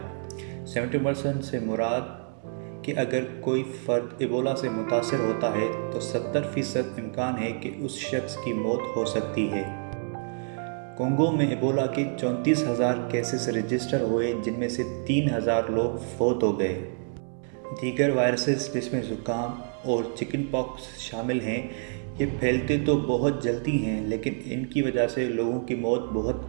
70% سے مراد کہ اگر کوئی فرد ایبولا سے متاثر ہوتا ہے تو 70% امکان ہے کہ اس شخص کی موت ہو سکتی ہے۔ کونگو میں ایبولا کے 34,000 کیسز رجسٹر ہوئے جن میں سے 3,000 لوگ فوت ہو گئے۔ دیگر وائرسز جس میں زکام اور چکن پاکس شامل ہیں یہ پھیلتے تو بہت جلدی ہیں لیکن ان کی وجہ سے لوگوں کی موت بہت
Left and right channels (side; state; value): left; silent; 60 dB below the other